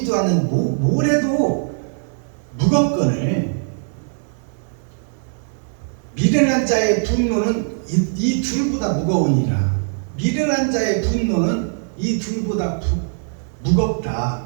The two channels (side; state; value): left; silent; digital silence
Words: 않는 모래도 무겁거늘 미련한 자의 분노는 이 둘보다 무거우니라. 미련한 자의 분노는 이 둘보다